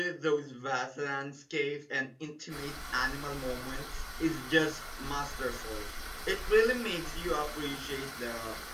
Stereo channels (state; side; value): identical; both; correlation 1.00